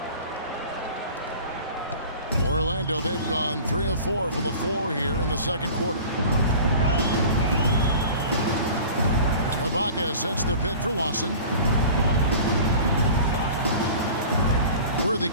Orlando, they've gone 3 of 4 from the floor here in the second quarter. Ibaka sets the pick for Lawson. Worthy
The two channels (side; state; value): both; inverted; correlation -0.41